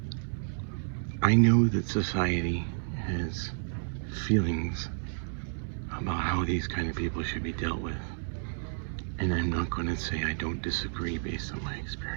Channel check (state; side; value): silent; left; digital silence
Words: I know that society has feelings about how these kind of people should be dealt with, and I'm not going to say I don't disagree based on my